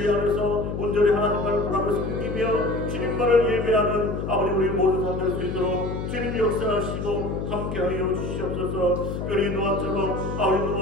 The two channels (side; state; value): left; noise; hum, 4 dB below the sound